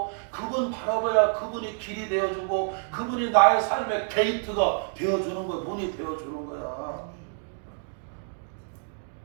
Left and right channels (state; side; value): silent; left; 60 dB below the other